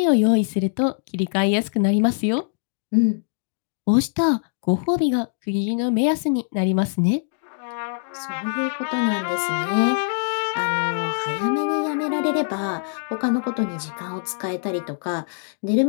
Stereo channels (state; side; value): silent; right; 63 dB below the other